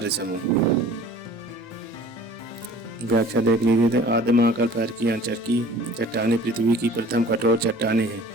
समूह। व्याख्या देख लीजिए। आद्य महाकल्प अर्कियांचर की चट्टानें पृथ्वी की प्रथम कठोर चट्टानें हैं।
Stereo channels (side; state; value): both; normal; correlation 0.47